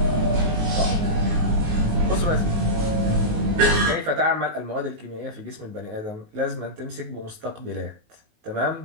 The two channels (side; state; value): left; late; 19 ms